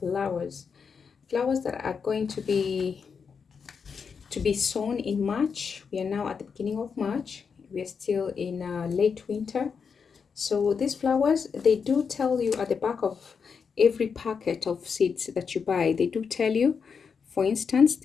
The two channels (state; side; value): quieter; right; 6.0 dB